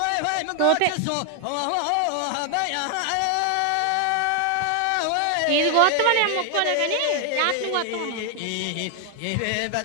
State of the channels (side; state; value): both; different; correlation 0.00